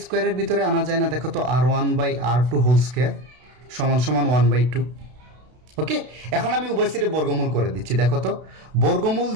স্কোয়ারের ভিতরে আনা যায় না? দেখো তো R1 by R2 whole square সমান সমান 1/2। ওকে, এখন আমি উভয় সাইডে বর্গমূল করে দিচ্ছি। দেখো তো বর্গমূল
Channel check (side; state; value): left; late; 32 ms